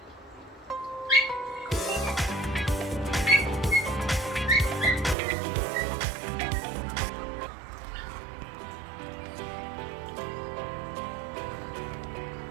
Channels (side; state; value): left; drops out; at 5.2 s